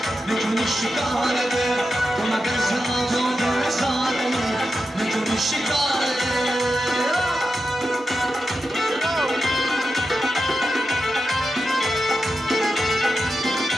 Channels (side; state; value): both; normal; correlation 0.89